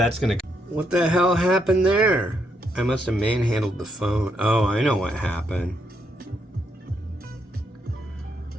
what the hell happened there? I must have manhandled the phone. Oh, I know what happened.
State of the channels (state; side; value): normal; both; correlation 0.77